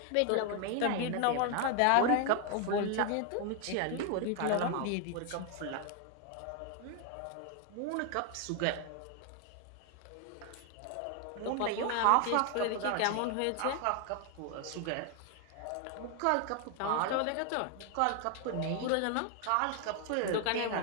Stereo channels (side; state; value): both; different; correlation 0.00